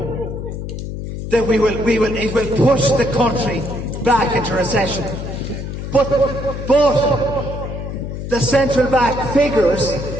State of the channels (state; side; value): noise; left; hum, 7 dB below the sound